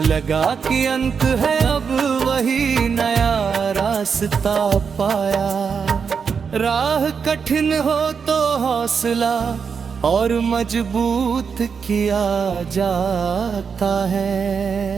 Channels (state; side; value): quieter; left; 6.1 dB